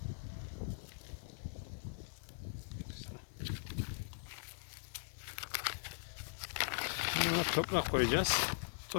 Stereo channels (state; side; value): silent; right; digital silence